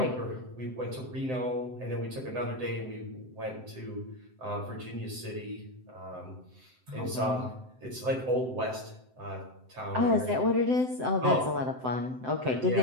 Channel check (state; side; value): late; left; 7.8 ms